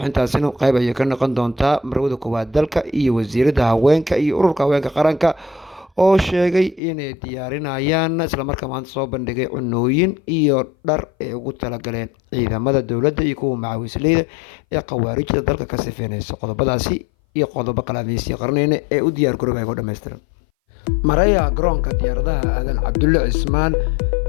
qayb ayay ka noqon doontaa marwada koowaad dalka iyo wasiirada haweenka iyo ururka haweenka qaranka oo sheegay inay diyaarinayaan islamarkaa maanta soo bandhigay cunooyin iyo dhar ay ugu talagaleen ciidamada dowladda iyo kuwa macawisleyda ee khawaarijda dalka ka sifeynaysa qodobadaasi iyo qodobo kale adeysii qarneyna ee u diyaar garooba ku dhammaystiran maraya garoonka diyaaradaha aadan cabdulle cismaan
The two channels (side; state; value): right; drops out; at 6.8 s